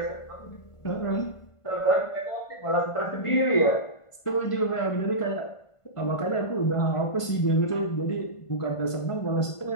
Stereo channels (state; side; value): late; right; 1.5 ms